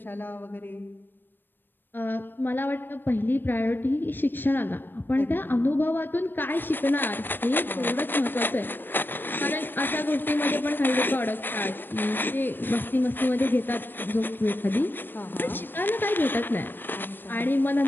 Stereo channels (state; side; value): late; right; 0.095 ms